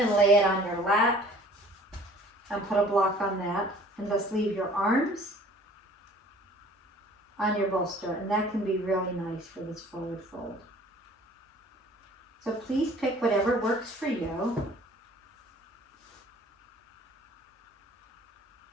lay it on your lap and put a block on that, and just leave your arms on your bolster, and that can be really nice for this forward fold. So please pick whatever works for you.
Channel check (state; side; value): normal; both; correlation 0.51